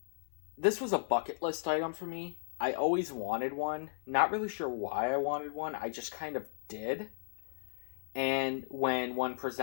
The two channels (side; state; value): right; silent; 54 dB below the other